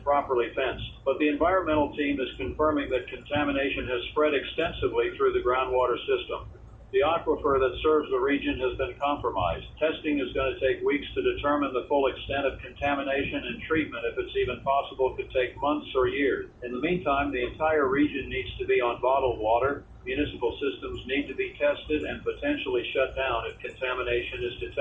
properly fenced, but the environmental team is confirming that contamination has spread extensively through the groundwater system. The aquifer that serves the region has been compromised. Testing is going to take weeks to determine the full extent of contamination, and treatment, if it's even possible, could take months or years. In the meantime, the entire region needs to be on bottled water. Municipal systems need to be tested and potentially shut down if contamination is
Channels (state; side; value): identical; both; correlation 1.00